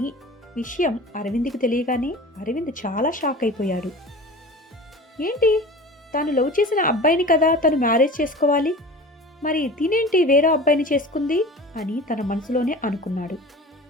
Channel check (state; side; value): normal; both; correlation 0.37